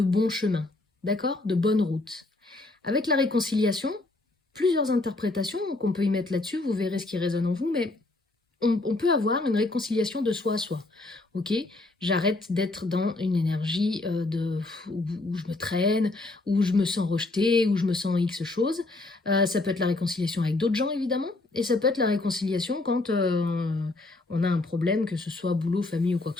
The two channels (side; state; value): right; quieter; 3.0 dB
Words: bon chemin, d'accord? De bonne route. Avec la réconciliation, plusieurs interprétations qu'on peut y mettre là-dessus, vous verrez ce qui résonne en vous, mais on peut avoir une réconciliation de soi à soi. Ok, j'arrête d'être dans une énergie où je me traîne, où je me sens rejetée, où je me sens X choses. Ça peut être la réconciliation avec d'autres gens, évidemment, et ça peut être la réconciliation quand on a un problème, que ce soit boulot, famille ou quoi